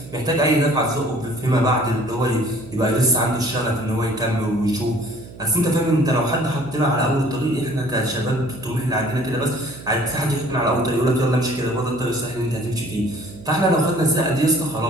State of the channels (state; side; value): noise; right; hum, 17 dB below the sound